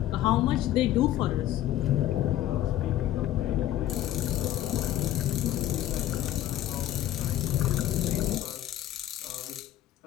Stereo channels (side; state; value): right; quieter; 13.1 dB